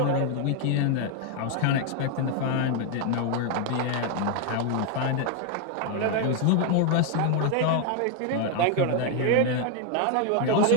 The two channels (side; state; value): both; different; correlation 0.01